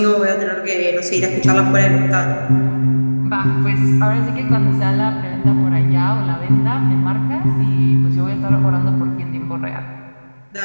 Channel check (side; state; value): both; inverted; correlation -1.00